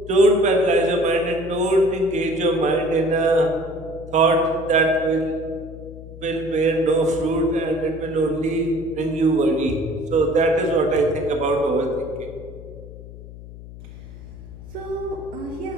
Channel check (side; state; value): left; noise; hum, 15 dB below the sound